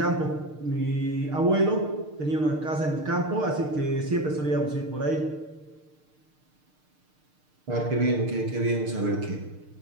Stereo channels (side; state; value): left; late; 6.6 ms